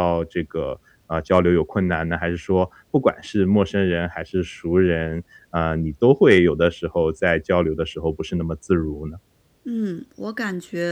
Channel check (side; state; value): both; identical; correlation 1.00